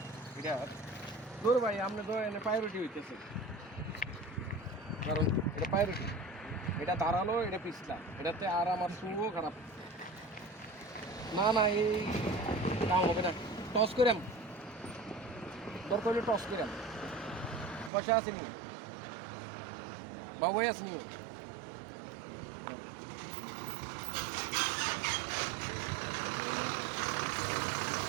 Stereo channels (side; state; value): left; drops out; at 17.9 s